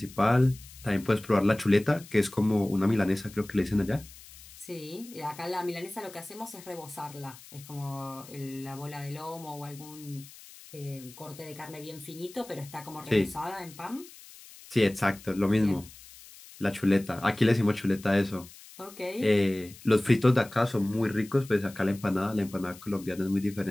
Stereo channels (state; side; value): noise; left; hiss, 19 dB below the sound